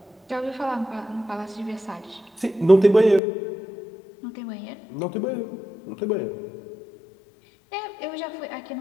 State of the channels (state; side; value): drops out; right; at 3.2 s